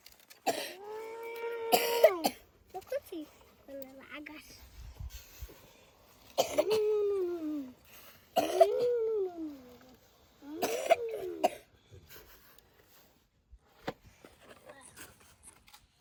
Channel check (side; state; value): both; identical; correlation 1.00